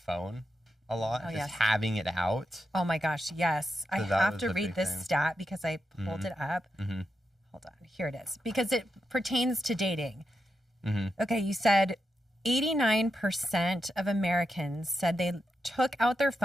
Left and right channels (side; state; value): both; normal; correlation 0.86